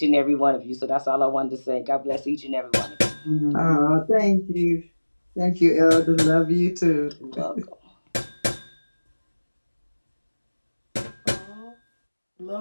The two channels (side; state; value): both; inverted; correlation -1.00